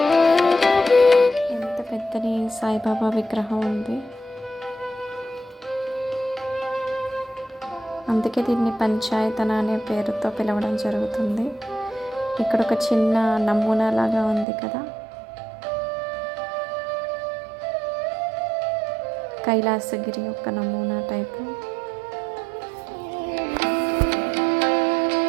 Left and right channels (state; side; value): drops out; left; at 14.5 s